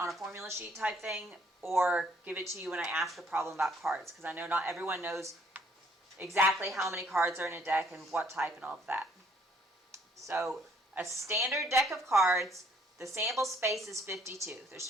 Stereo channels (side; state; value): both; normal; correlation 0.64